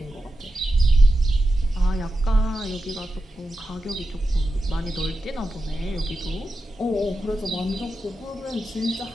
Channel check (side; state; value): both; normal; correlation 0.91